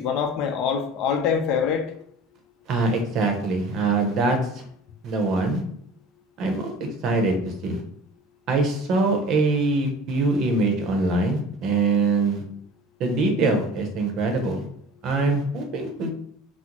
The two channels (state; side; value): normal; both; correlation 0.42